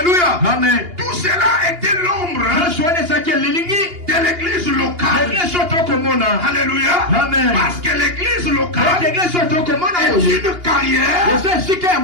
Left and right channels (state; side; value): late; left; 2.8 ms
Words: Amen. Tout cela était l'ombre de l'église locale. Alléluia. Amen. Parce que l'église locale est une carrière